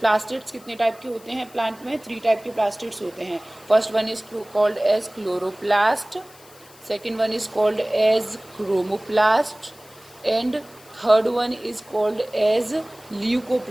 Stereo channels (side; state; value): left; noise; hiss, 24 dB below the sound